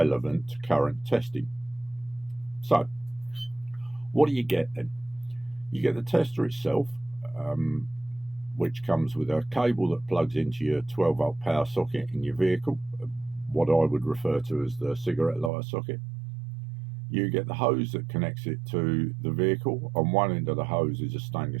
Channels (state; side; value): drops out; left; at 15.5 s